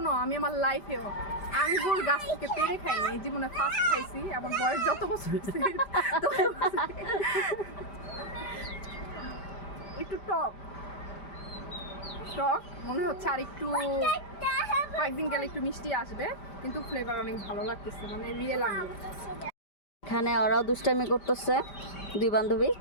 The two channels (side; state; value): right; late; 5.0 ms